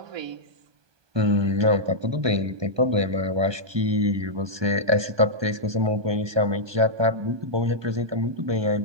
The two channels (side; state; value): left; late; 1.2 ms